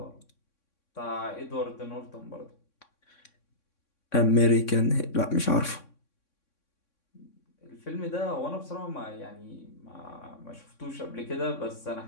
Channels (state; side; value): late; right; 3.6 ms